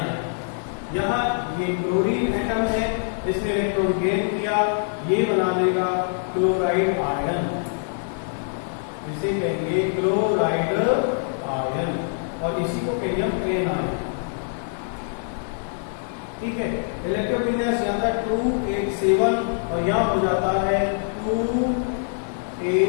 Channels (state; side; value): silent; right; digital silence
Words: यहाँ ये क्लोरीन एटम है, इसने इलेक्ट्रॉन गेन किया, ये बना देगा क्लोराइड आयन, इसे कहेंगे क्लोराइड आयन, और इसी को कहेंगे हम एनायन। ठीक है, इलेक्ट्रोविन्यास यहाँ था 287 और यहाँ हो जाता है